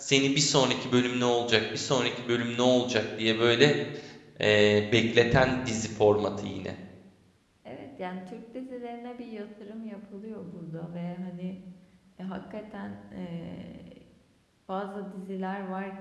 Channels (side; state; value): both; identical; correlation 1.00